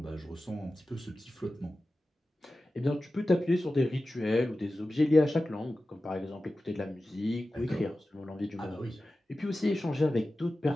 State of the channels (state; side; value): normal; both; correlation 0.95